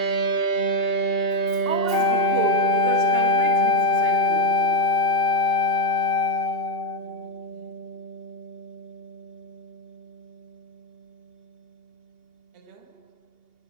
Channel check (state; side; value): late; right; 2.8 ms